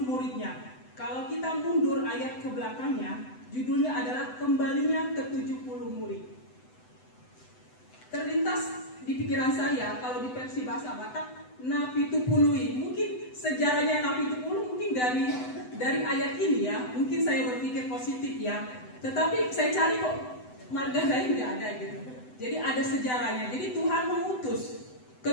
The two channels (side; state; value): right; late; 7.9 ms